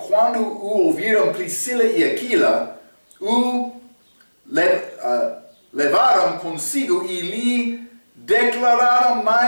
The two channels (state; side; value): inverted; both; correlation -1.00